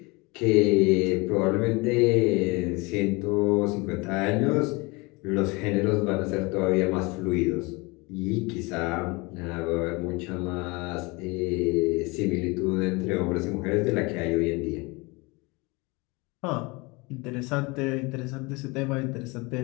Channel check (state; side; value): quieter; right; 26.0 dB